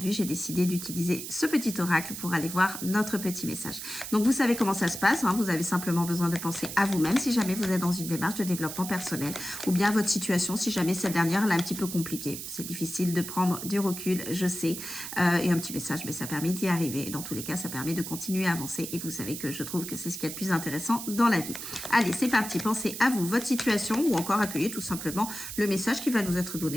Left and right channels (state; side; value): noise; right; hiss, 8 dB below the sound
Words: j'ai décidé d'utiliser ce petit oracle pour aller voir notre petit message. Donc, vous savez comment ça se passe. Hein. Vous avez simplement besoin de penser à vous-même si jamais vous êtes dans une démarche de développement personnel. Ou bien votre situation, si jamais cette dernière elle est un petit peu compliquée. C'est difficile de prendre du recul, je sais. Et un petit message, mais ça permet d'y arriver. Dans tous les cas, ça permet de continuer à avancer. Et vous savez que je trouve que c'est ce qu'il y a de plus intéressant dans la vie. Allez, c'est parti. Pensez à vous, votre situation, ou encore accueillez tout simplement le message qui va nous être